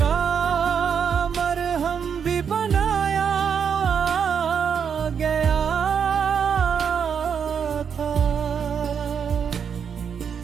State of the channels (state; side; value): quieter; left; 7.2 dB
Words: مرہم بھی بنایا گیا تھا،